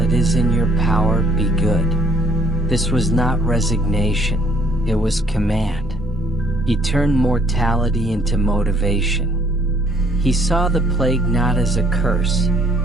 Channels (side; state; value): both; normal; correlation 0.65